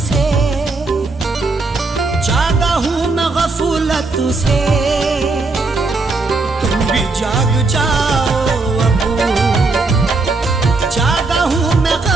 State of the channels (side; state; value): left; quieter; 3.6 dB